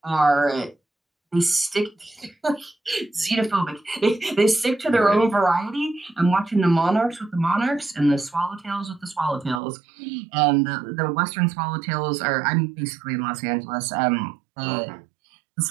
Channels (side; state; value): left; drops out; at 9.6 s